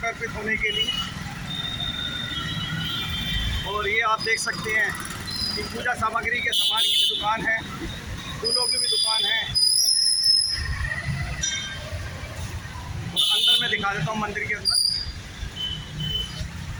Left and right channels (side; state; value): both; identical; correlation 1.00